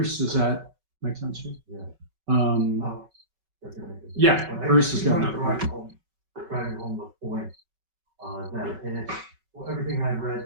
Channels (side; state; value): left; late; 5.3 ms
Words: does that make sense to you? Yeah. Yeah, Bruce is going to driving home the point that, and it's everything I